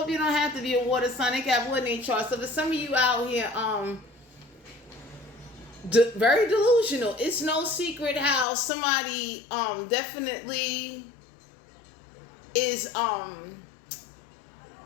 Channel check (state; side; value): drops out; right; at 8.5 s